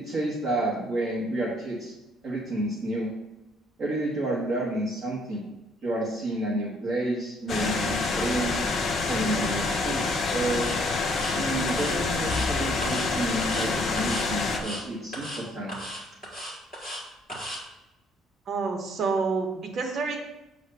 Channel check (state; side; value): normal; both; correlation 0.64